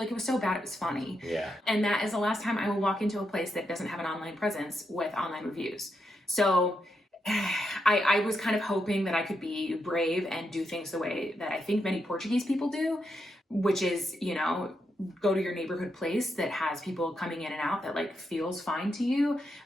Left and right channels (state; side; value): normal; both; correlation 0.83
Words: so bad it was funny. Yeah. And that is the last time I will walk into a place that doesn't have an online presence with online reviews. So I was kind of hoping that I could be brave and do things the way that I think many Portuguese people do, which is, go to your neighborhood place that has people coming in and out that like feels fine to you.